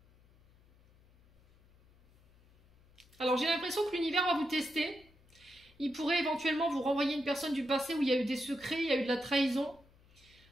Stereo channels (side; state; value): left; noise; hum, 29 dB below the sound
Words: Alors, j'ai l'impression que l'univers va vous tester. Il pourrait éventuellement vous renvoyer une personne du passé où il y a eu des secrets, il y a eu de la trahison.